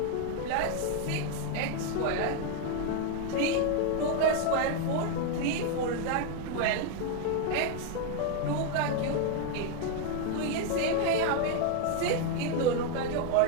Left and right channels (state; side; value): different; both; correlation 0.00